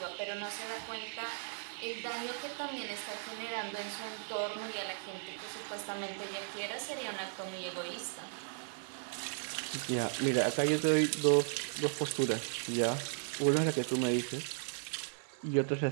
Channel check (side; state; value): left; silent; digital silence